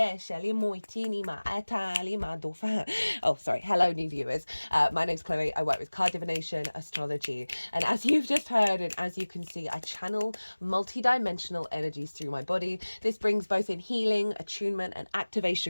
Hello new viewers. My name's Chloe. I work with card divination, astrology, and as you've just heard and as you can see, I channel multi-dimensional energies through my body. This brings both in healing, attunement, and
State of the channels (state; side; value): inverted; both; correlation -1.00